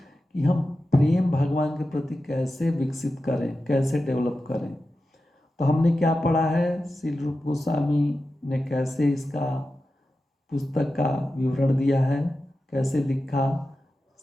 कि हम प्रेम भगवान के प्रति कैसे विकसित करें, कैसे डेवलप करें। तो हमने क्या पढ़ा है, श्री रूप गोस्वामी ने कैसे इसका पुस्तक का विवरण दिया है, कैसे लिखा,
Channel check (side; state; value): both; normal; correlation 0.92